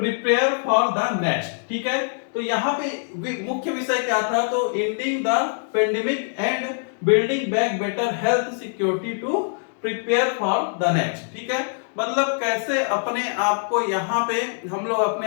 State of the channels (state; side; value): silent; right; 63 dB below the other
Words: for the next. ठीक है, तो यहाँ पे मुख्य विषय क्या था? तो ending the pandemic and building back better health security to prepare for the next. ठीक है, मतलब कैसे अपने आप को यहाँ पे हम लोग